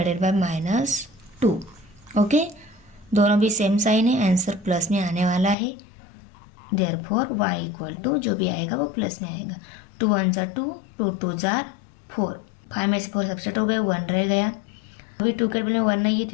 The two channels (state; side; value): drops out; right; at 5.6 s